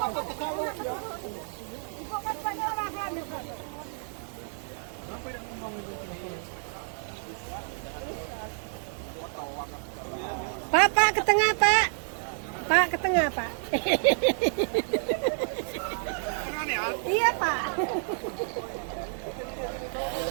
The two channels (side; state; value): left; silent; 58 dB below the other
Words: Ibu kan banyak orang Niko. Pak, ke tengah, Pak. Pak, ke tengah, Pak. Iya, Pak.